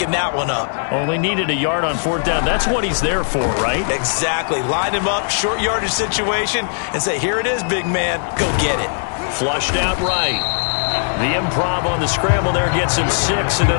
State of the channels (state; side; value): silent; right; 65 dB below the other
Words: that one up? Only needed a yard on 4th down. That's what he's there for, right? Exactly. Line him up, short yardage situation, and say, here it is, big man. Go get it. Flushed out right. The improv on the scramble there gets him 6, and